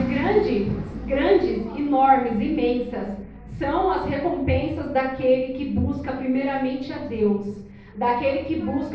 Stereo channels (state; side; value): identical; both; correlation 1.00